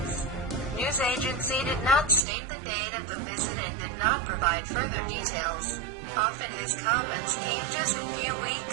News agency did not state the date of the visit and did not provide further details. Often his comments came just a few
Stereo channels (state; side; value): drops out; left; at 2.2 s